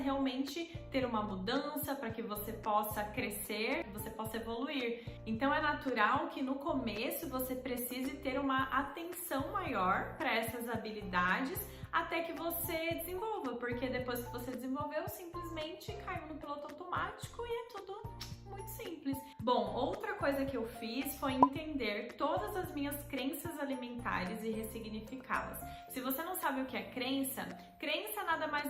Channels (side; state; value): both; identical; correlation 1.00